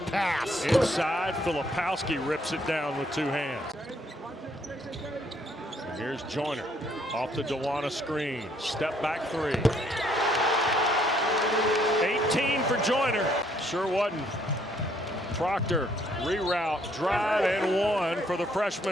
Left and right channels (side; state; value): both; normal; correlation 0.67